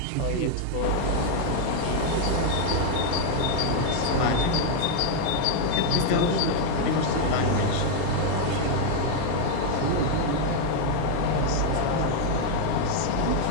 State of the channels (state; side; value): different; both; correlation 0.00